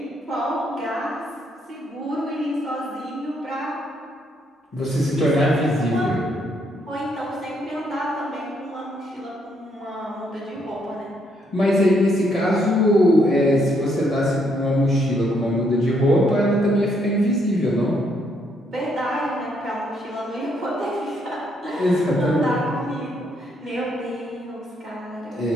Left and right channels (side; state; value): both; normal; correlation 0.73